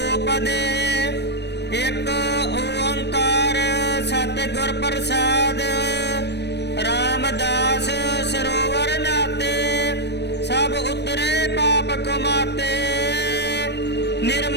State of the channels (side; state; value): right; late; 0.50 ms